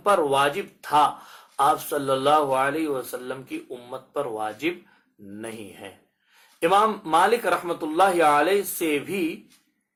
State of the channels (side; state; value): both; identical; correlation 1.00